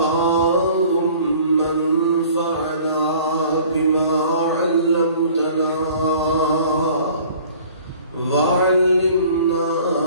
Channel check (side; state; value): both; inverted; correlation -0.50